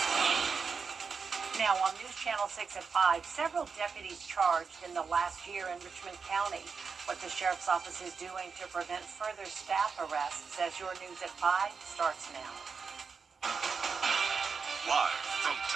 Now on News Channel 6 at 5, several deputies charged in the last year in Richmond County. What the Sheriff's Office is doing to prevent further staff arrests as your News at 5 starts now. Live from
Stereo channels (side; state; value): left; quieter; 5.4 dB